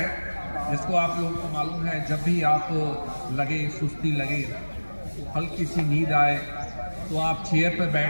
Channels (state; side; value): inverted; both; correlation -1.00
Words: जिसको आप लोगों को मालूम है, जब भी आप लगे सुस्ती लगे, हल्की सी नींद आए तो आप चेयर पर